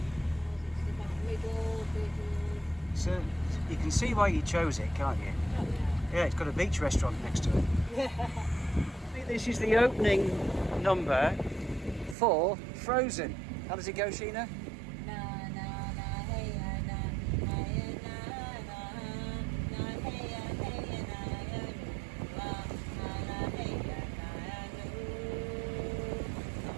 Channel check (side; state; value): left; drops out; at 12.2 s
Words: So you can see why you chose it, can't you? Yeah, it's got a beach restaurant next to it. I think this is the opening number for Frozen. How does it go, Sheena?